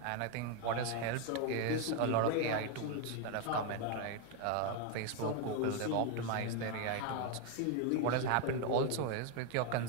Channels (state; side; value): different; both; correlation 0.01